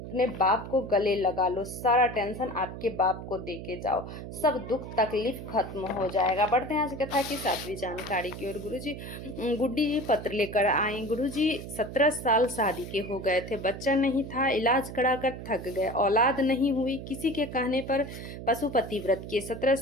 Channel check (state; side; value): noise; right; hum, 10 dB below the sound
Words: अपने बाप को गले लगा लो। सारा टेंशन आपके बाप को दे के जाओ, सब दुख तकलीफ खत्म हो जाएगा। बढ़ते हैं आज कथा की 7वीं जानकारी की ओर। गुरुजी गुड्डी जी पत्र लेकर आए। गुरुजी 17 साल शादी के हो गए थे, बच्चा नहीं था, इलाज कराकर थक गए, औलाद नहीं हुई। किसी के कहने पर पशुपति व्रत किए। 17